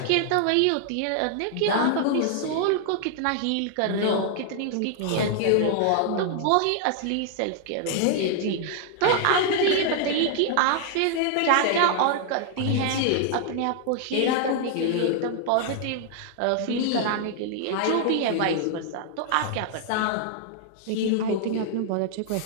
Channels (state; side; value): different; both; correlation 0.00